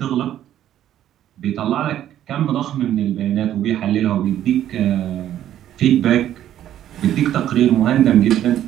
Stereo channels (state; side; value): quieter; left; 11.6 dB